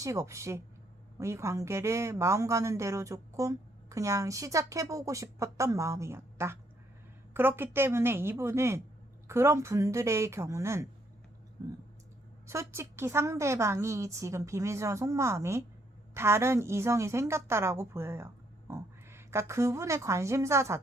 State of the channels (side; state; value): both; normal; correlation 0.71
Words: 없이 이 관계를 마음 가는 대로 조금 그냥 시작해보고 싶었던 마음이었다. 그렇기 때문에 이분은, 그런 분들의 경우는 솔직히 상대방이 지금 비밀스러운 속마음이 다른 이성이 생겼다라고 보여요. 그러니까 그분의 관심사